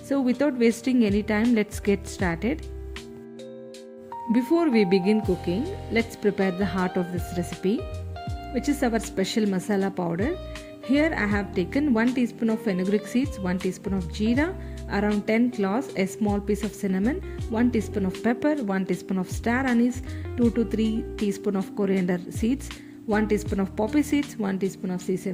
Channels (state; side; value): identical; both; correlation 1.00